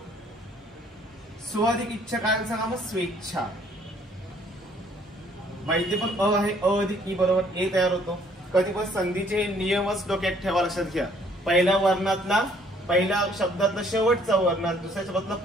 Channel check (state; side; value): normal; both; correlation 0.62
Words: स्व अधिक इच्छा काय सांगा मग, स्वेच्छा. माहिती पण अ आहे, अ अधिक ई बरोबर ए तयार होतो. कधी पण संधीचे नियमच डोक्यात ठेवा, लक्षात घ्या. पहिल्या वर्णातला, पहिल्या शब्दातला शेवटचा वर्ण, दुसऱ्या शब्दातला